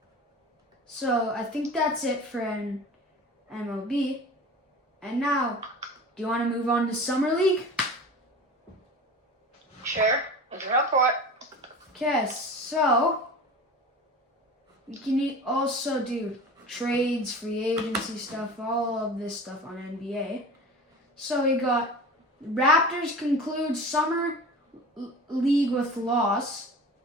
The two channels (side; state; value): both; normal; correlation 0.36